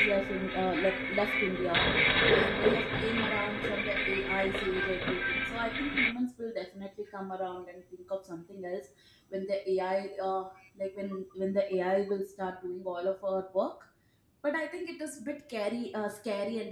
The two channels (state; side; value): identical; both; correlation 1.00